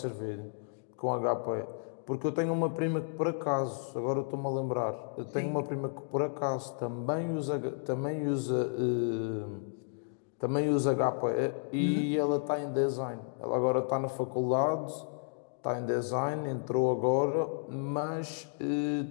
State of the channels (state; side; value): silent; right; digital silence